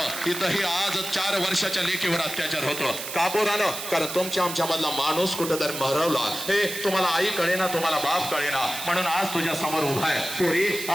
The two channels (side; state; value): right; noise; hiss, 7 dB below the sound